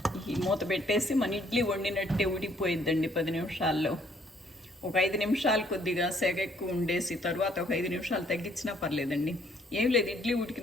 ఈ మూత పెట్టేసి మన ఇడ్లీ వండినట్టే ఉడికిపోయిద్దండి 10 నిమిషాల్లో. ఒక 5 నిమిషాలు కొద్దిగా సెగ ఎక్కువ ఉండేసి తర్వాత ఒక 5 నిమిషాలు తగ్గించినా పర్లేదండి. ఏం లేదు, ఇడ్లీ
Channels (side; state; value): both; normal; correlation 0.65